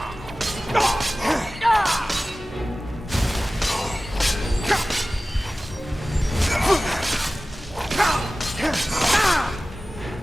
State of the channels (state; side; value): normal; both; correlation 0.97